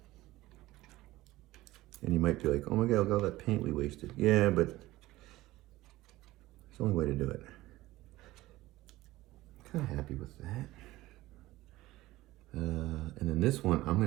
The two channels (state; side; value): quieter; left; 17.5 dB